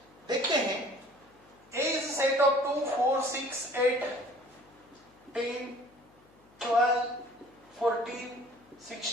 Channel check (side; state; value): left; noise; hum, 29 dB below the sound